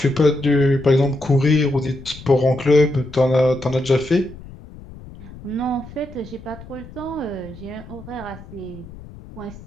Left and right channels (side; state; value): left; noise; rumble, 17 dB below the sound